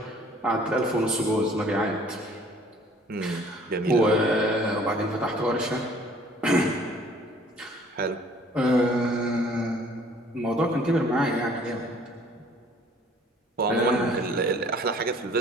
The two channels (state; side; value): normal; both; correlation 0.55